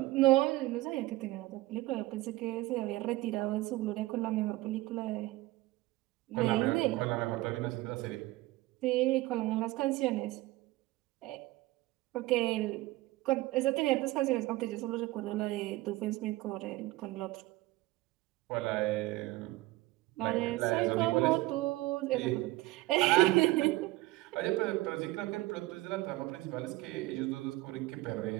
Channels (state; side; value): quieter; left; 18.9 dB